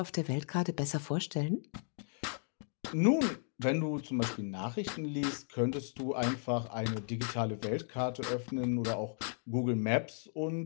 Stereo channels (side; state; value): right; silent; 54 dB below the other